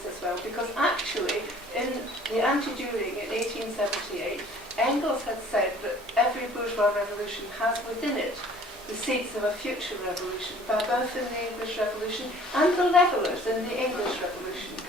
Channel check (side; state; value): both; normal; correlation 0.52